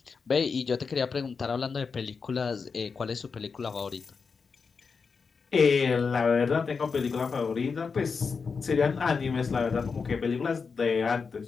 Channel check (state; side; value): quieter; right; 5.2 dB